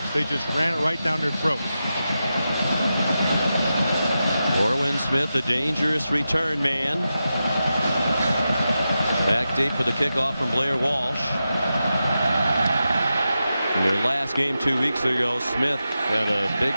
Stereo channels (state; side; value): inverted; both; correlation -0.90